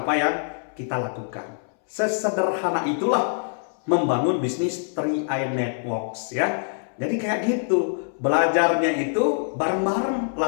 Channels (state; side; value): silent; right; 62 dB below the other